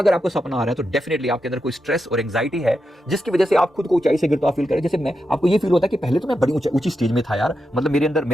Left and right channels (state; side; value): normal; both; correlation 0.87